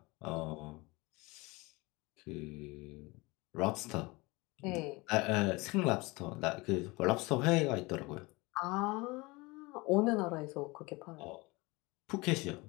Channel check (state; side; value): quieter; right; 24.2 dB